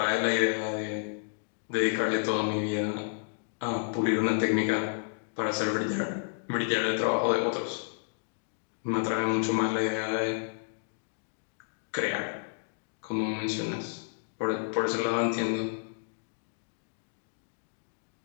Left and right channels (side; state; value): right; silent; digital silence